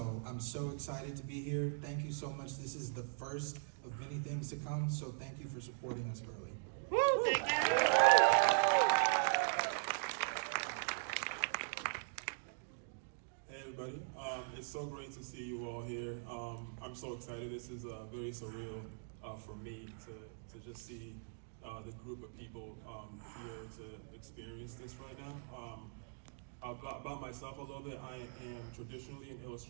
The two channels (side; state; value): left; silent; digital silence